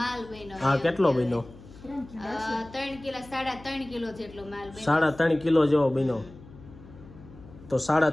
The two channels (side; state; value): left; noise; hum, 19 dB below the sound